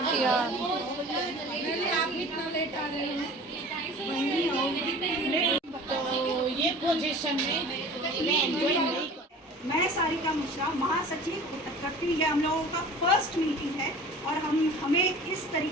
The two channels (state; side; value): normal; both; correlation 0.42